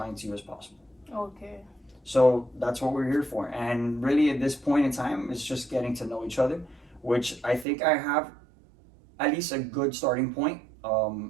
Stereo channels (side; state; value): left; drops out; at 7.7 s